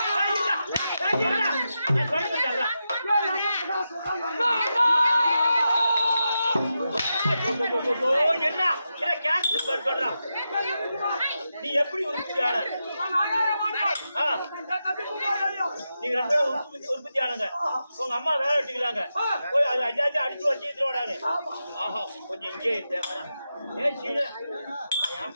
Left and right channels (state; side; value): inverted; both; correlation -0.88